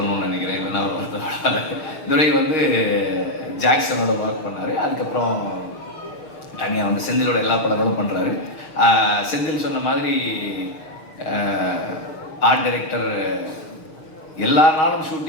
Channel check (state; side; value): late; right; 6.5 ms